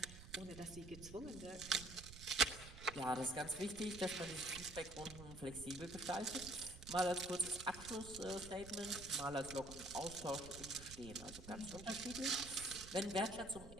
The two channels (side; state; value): right; noise; rumble, 14 dB below the sound